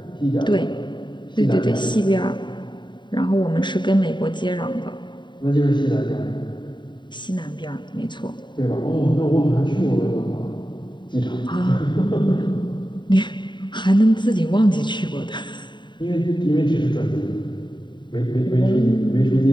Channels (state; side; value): late; right; 0.22 ms